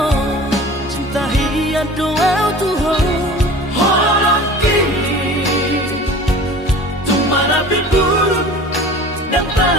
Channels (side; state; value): both; normal; correlation 0.41